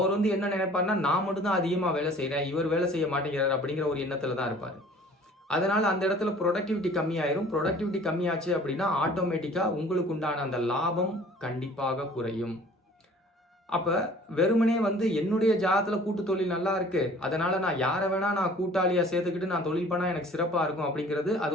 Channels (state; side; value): normal; both; correlation 0.50